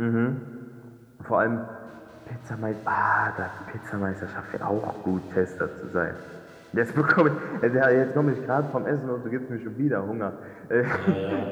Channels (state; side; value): identical; both; correlation 1.00